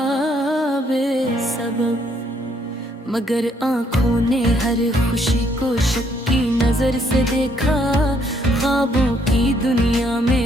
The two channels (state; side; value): normal; both; correlation 0.69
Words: बेसबब, मगर आँखों ने हर खुशी को शक की नजर से देखा। ख्वाबों की दुनिया